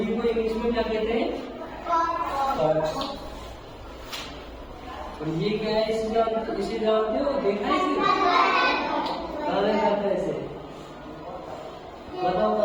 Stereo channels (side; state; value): both; identical; correlation 1.00